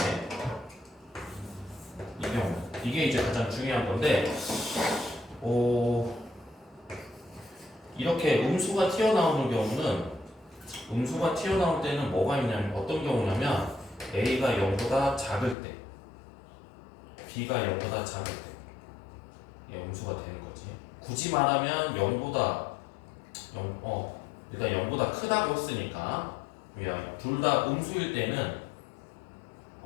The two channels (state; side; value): drops out; right; at 15.6 s